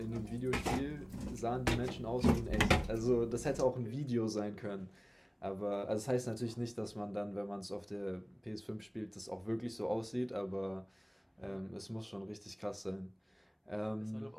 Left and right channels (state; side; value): identical; both; correlation 1.00